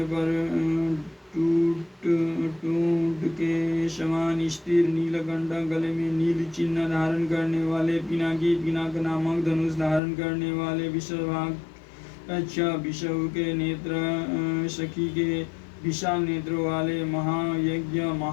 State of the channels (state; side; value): drops out; right; at 10.0 s